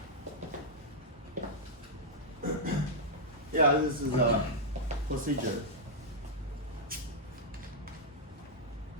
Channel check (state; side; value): normal; both; correlation -0.07